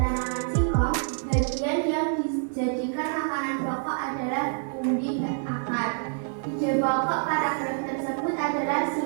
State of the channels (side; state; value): left; silent; digital silence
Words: singkong, bagian yang dijadikan makanan pokok adalah umbi Ide pokok paragraf tersebut adalah